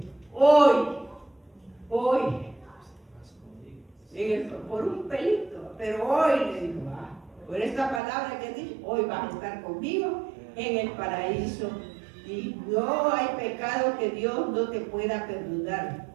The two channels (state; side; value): drops out; left; at 8.0 s